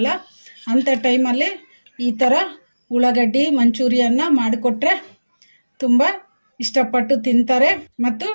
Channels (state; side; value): inverted; both; correlation -1.00